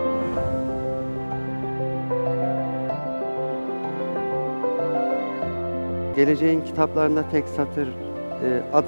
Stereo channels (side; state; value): both; inverted; correlation -1.00